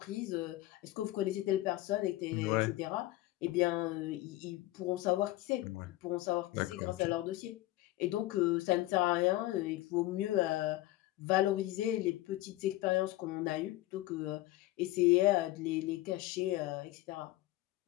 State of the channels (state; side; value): quieter; right; 17.0 dB